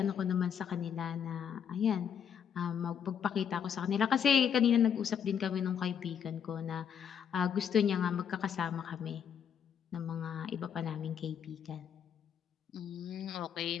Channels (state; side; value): quieter; right; 8.1 dB